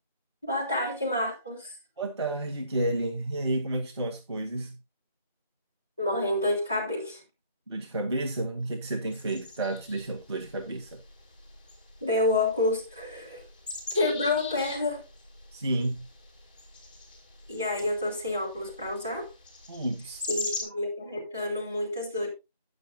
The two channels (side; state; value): both; inverted; correlation -0.53